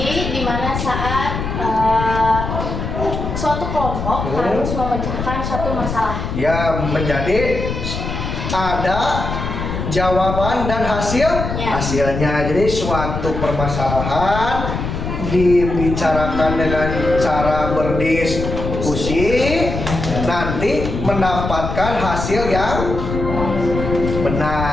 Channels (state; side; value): noise; left; rumble, 4 dB below the sound